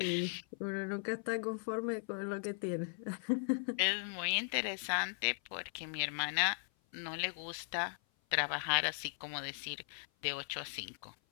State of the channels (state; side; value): silent; right; 52 dB below the other